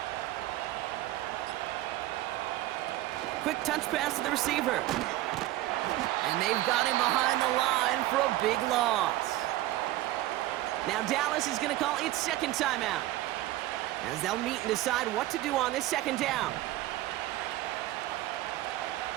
Quick touch pass to the receiver. And they've got him behind the line for a big loss. Now Dallas is going to call its second timeout, as they'll meet and decide what to do on this second down.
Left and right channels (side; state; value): left; quieter; 15.9 dB